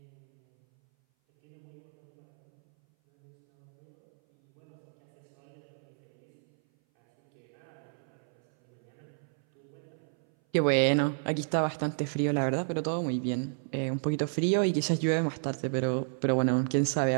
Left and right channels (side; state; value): left; silent; 57 dB below the other